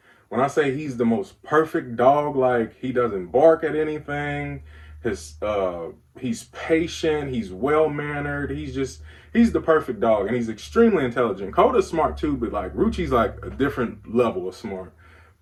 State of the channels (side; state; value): both; identical; correlation 1.00